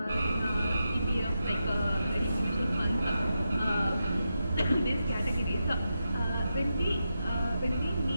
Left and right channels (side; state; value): both; inverted; correlation -0.87